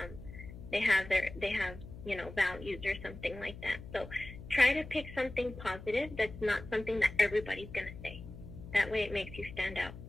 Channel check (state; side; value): noise; left; hum, 13 dB below the sound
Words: They have you know, values or something like that. So try to pick something positive that's not something that everybody's going to say. That way it makes you stand out.